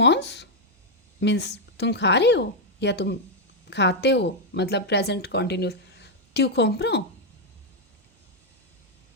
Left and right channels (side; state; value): both; normal; correlation -0.02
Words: मीन्स तुम खा रहे हो या तुम खाते हो, मतलब प्रेजेंट कॉन्टिन्यूस. ट्यू कॉम्प्रो